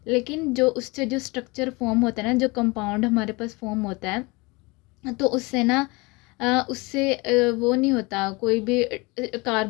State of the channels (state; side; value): quieter; right; 25.5 dB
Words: लेकिन जो उससे जो स्ट्रक्चर फॉर्म होता है ना, जो कंपाउंड हमारे पास फॉर्म होता है, तो उससे ना उससे वो नहीं होता कोई भी